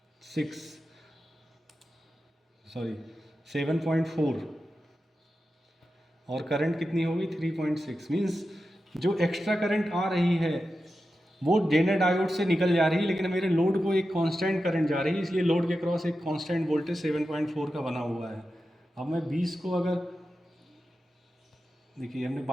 और करंट कितनी होगी 3.6। मीन्स जो एक्स्ट्रा करंट आ रही है वो जेनर डायोड से निकल जा रही है, लेकिन मेरे लोड को एक कांस्टेंट करंट जा रही है, इसलिए लोड के क्रॉस एक कांस्टेंट वोल्टेज 7.4 का बना हुआ है। अब मैं 20 को अगर देखिए हमने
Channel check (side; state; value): both; normal; correlation 0.91